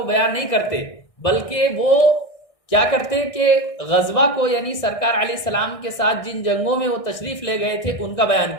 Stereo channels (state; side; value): late; right; 1.6 ms